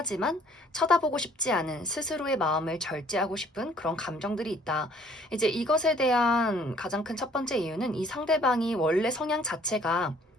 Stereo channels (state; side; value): normal; both; correlation 0.58